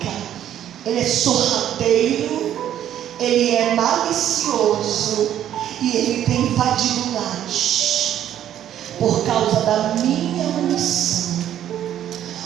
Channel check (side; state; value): left; quieter; 11.0 dB